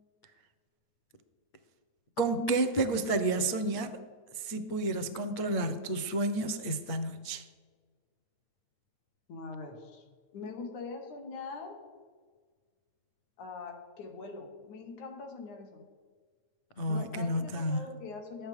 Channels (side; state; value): right; late; 8.6 ms